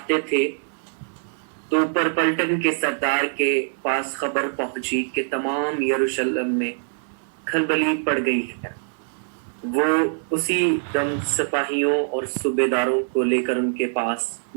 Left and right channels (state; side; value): silent; left; digital silence